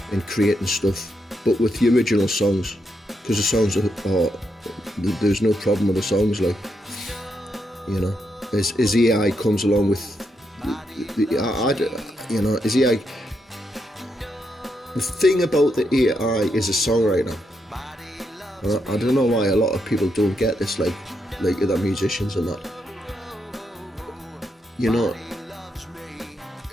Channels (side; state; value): both; normal; correlation 0.81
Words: in creating stuff, but with the original songs, because the songs are there's no problem with the songs, like, you know, as AI comes along with you know, as AI, the thing about the AI is a songwriter. I don't know why a lot of people don't get this, like the musicians and that. You know,